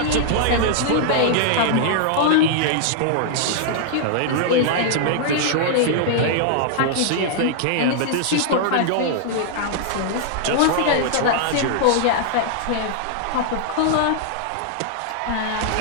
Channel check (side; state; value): both; different; correlation -0.01